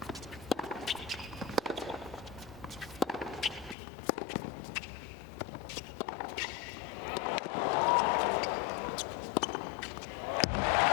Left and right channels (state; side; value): drops out; right; at 3.8 s